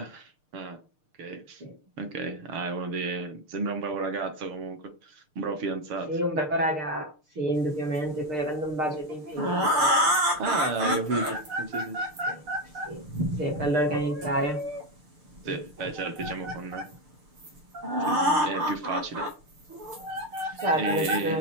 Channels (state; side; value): late; left; 6.6 ms